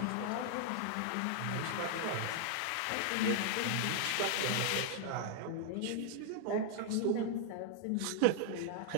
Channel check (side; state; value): both; different; correlation 0.00